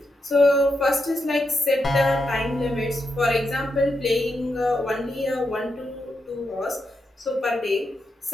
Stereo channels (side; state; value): both; normal; correlation 0.84